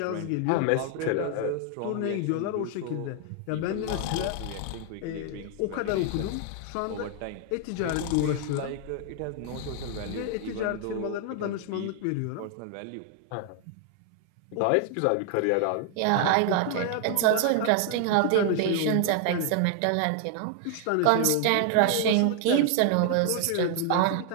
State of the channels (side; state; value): both; different; correlation 0.00